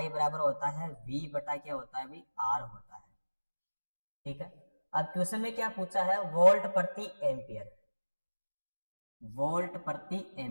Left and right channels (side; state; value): both; inverted; correlation -1.00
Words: बराबर होता है V बटा क्या होता है भाई R होता है। ठीक है, अब क्वेश्चन में क्या पूछा है, वोल्ट प्रति एम्पियर, वोल्ट प्रति